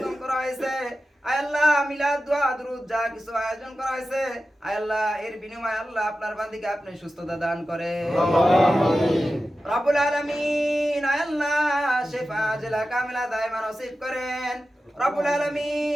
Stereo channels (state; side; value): normal; both; correlation 0.93